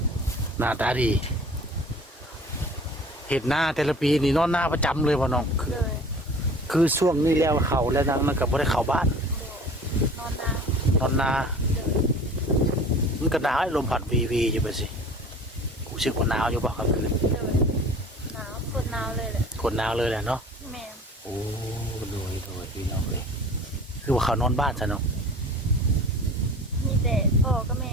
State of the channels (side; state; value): both; normal; correlation 0.44